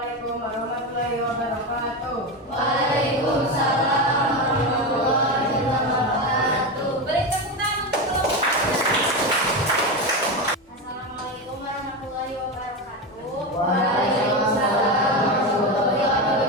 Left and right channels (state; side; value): normal; both; correlation 0.16